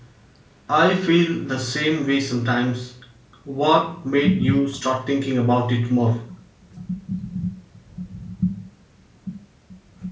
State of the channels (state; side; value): identical; both; correlation 1.00